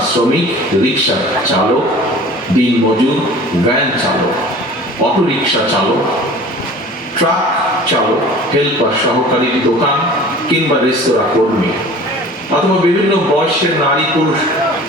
শ্রমিক, রিক্সা চালক, দিনমজুর, ভ্যান চালক, অটোরিক্সা চালক, ট্রাক চালক, হেল্পার, সহকারী, দোকান কিংবা রেস্তোরাঁ কর্মী অথবা বিভিন্ন বয়সের নারী পুরুষ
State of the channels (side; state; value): both; normal; correlation 0.43